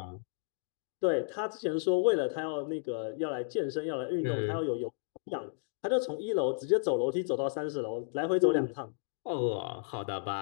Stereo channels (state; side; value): silent; right; digital silence